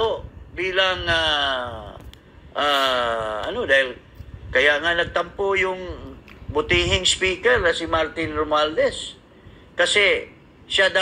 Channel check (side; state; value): both; identical; correlation 1.00